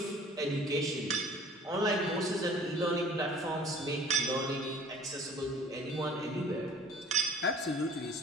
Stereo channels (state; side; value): normal; both; correlation 0.48